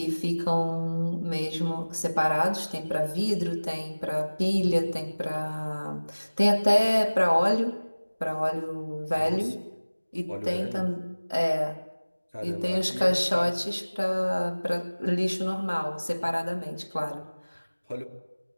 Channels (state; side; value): inverted; both; correlation -1.00